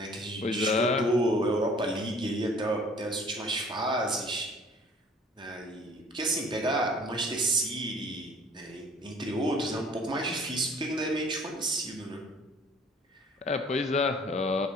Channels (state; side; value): normal; both; correlation 0.53